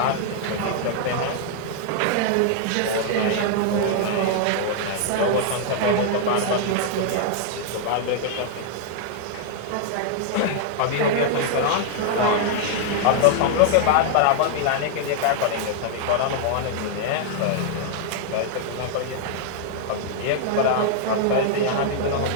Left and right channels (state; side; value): different; both; correlation -0.01